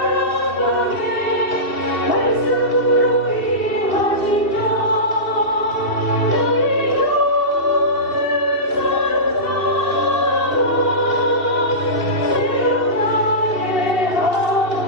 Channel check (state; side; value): late; right; 2.6 ms